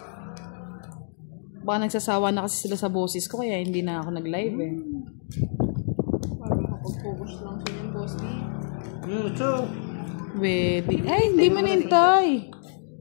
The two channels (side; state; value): right; silent; 61 dB below the other